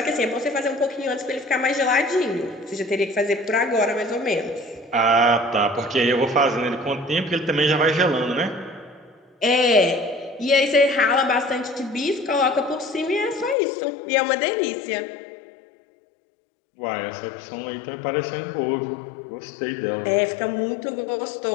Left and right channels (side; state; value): right; drops out; at 13.6 s